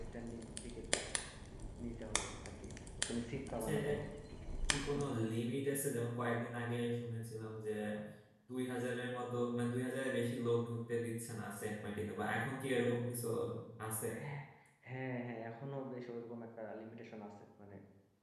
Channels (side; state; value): both; identical; correlation 1.00